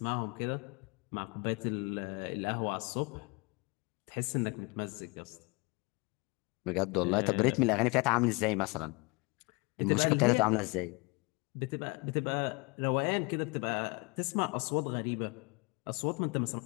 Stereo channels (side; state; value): right; quieter; 28.6 dB